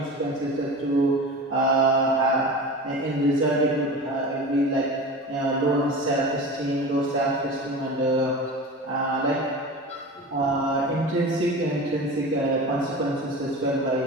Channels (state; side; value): normal; both; correlation 0.32